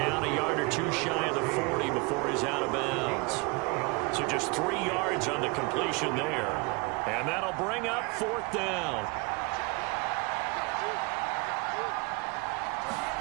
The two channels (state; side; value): quieter; left; 28.2 dB